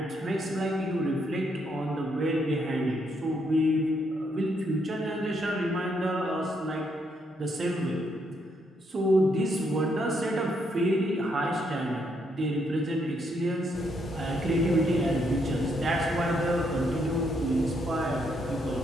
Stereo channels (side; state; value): both; normal; correlation 0.75